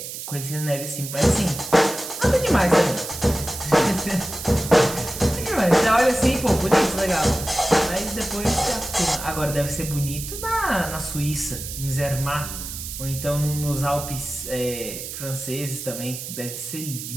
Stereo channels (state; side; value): noise; right; hiss, 8 dB below the sound